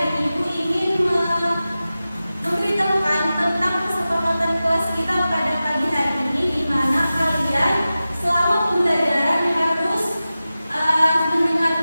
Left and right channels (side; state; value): both; inverted; correlation -0.94